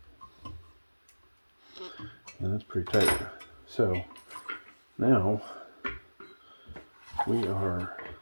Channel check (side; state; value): both; inverted; correlation -1.00